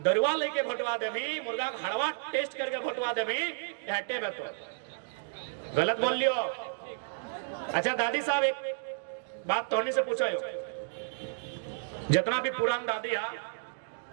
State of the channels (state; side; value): silent; left; digital silence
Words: लेके भोटवा देवी, मुर्गा का हड़वा टेस्ट करके भोटवा देवी, हटे में तो गलत बोल लियो। अच्छा दादी साहब, एक बात तोहनी से पूछो, जितना भी पुरान दादी है,